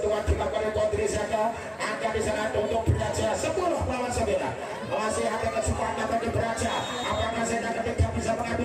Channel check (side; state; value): both; identical; correlation 1.00